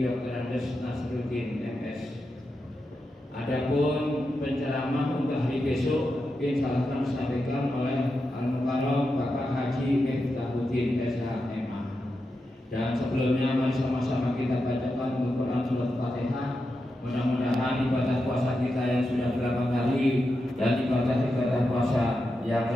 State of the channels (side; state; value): both; normal; correlation 0.88